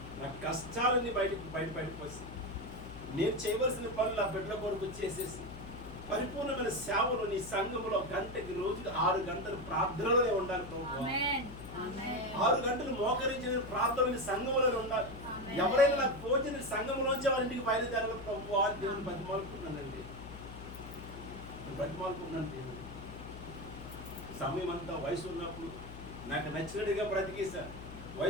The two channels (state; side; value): noise; left; hum, 13 dB below the sound